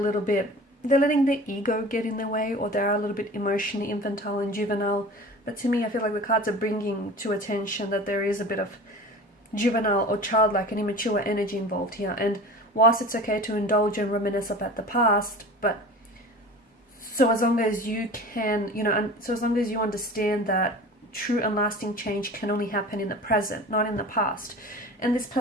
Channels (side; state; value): both; normal; correlation 0.38